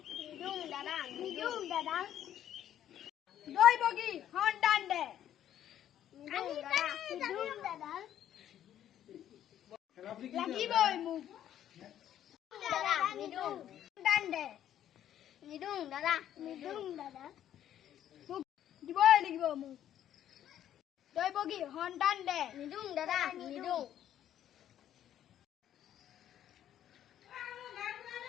নিদিওঁ দাদা, নিদিওঁ দাদা। দৈৱকী সন্তান দে। নিদিওঁ দাদা, নিদিওঁ দাদা। লাগিবই মোক। দাদা নিদিওঁ। সন্তান দে। নিদিওঁ দাদা, নিদিওঁ দাদা। মোক দিবই লাগিব মোক। দৈৱকী সন্তান দে। নিদিওঁ দাদা, নিদিওঁ।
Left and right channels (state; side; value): quieter; right; 11.0 dB